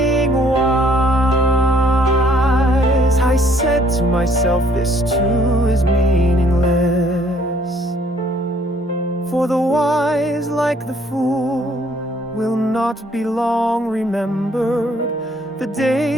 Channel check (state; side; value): normal; both; correlation 0.63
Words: wise? I said to myself, this too is meaningless. For the wise, like the fool, will not be long remembered. The